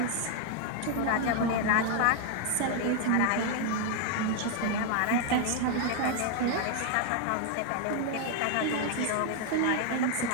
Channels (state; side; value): different; both; correlation 0.00